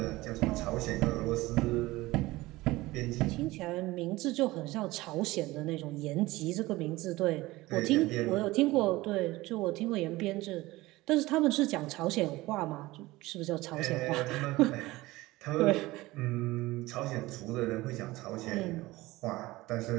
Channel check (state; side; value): quieter; left; 19.3 dB